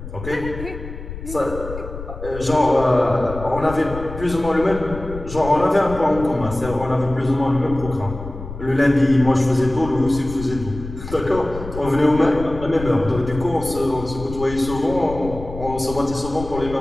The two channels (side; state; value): left; noise; rumble, 11 dB below the sound